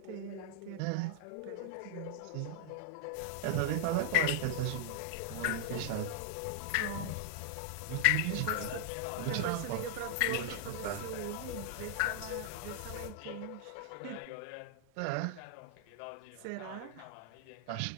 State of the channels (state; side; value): different; both; correlation 0.00